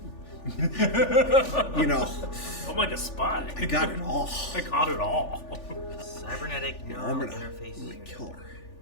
You know, I'm like a spy. I got it all. I got it all. Cybernetic I'm neural gonna interface. kill her.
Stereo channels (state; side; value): late; right; 3.4 ms